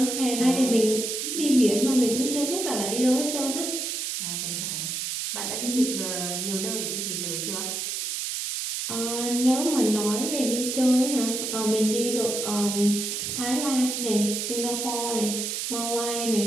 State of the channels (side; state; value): right; noise; hiss, 3 dB below the sound